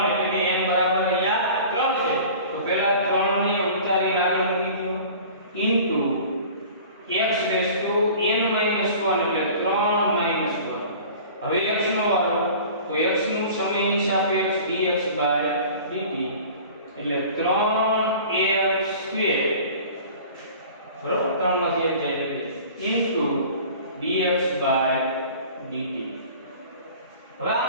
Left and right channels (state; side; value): inverted; both; correlation -0.43